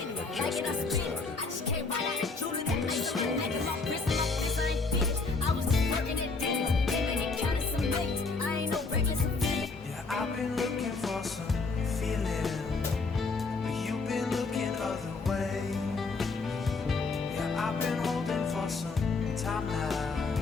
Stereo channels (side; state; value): right; quieter; 4.1 dB